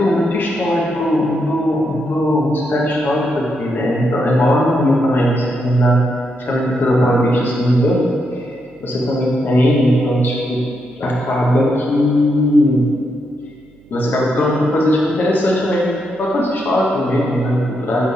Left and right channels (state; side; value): noise; right; hum, 29 dB below the sound